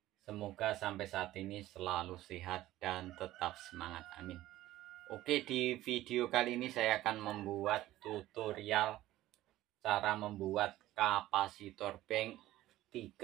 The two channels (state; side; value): quieter; left; 15.4 dB